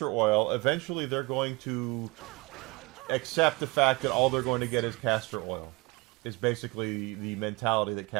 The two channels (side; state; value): left; quieter; 25.1 dB